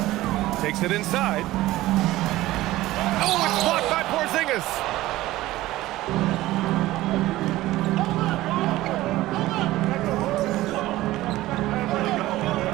Takes it inside. Oh, it's blocked by Porzingis.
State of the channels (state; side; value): quieter; left; 16.8 dB